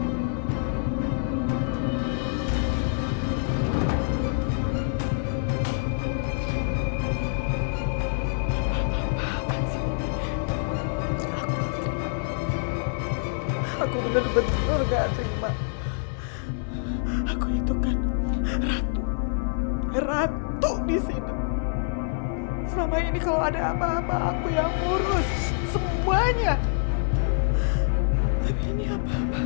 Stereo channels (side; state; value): right; silent; digital silence